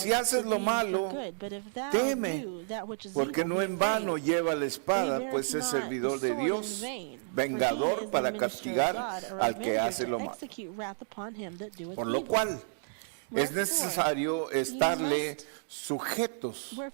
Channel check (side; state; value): left; silent; digital silence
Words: haces lo malo, teme. Porque no en vano lleva la espada, pues es servidor de Dios, vengador para castigar al que hace lo malo. Por lo cual es necesario estarle sujetos,